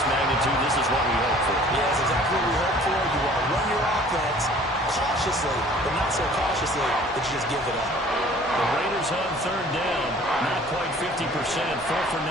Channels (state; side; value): normal; both; correlation 0.51